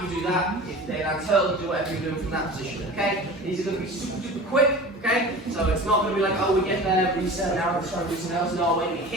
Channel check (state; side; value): normal; both; correlation 0.36